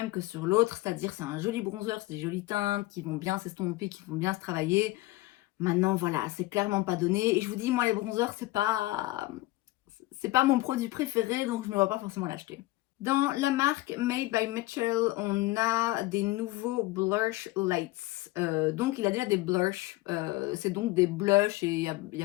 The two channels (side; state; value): right; quieter; 19.0 dB